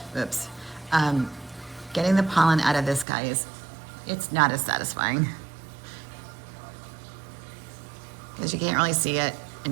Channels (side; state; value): left; drops out; at 3.1 s